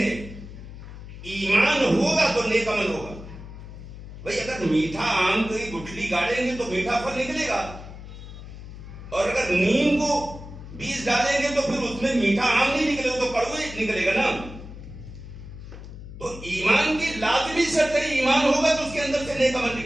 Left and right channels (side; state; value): left; noise; hum, 13 dB below the sound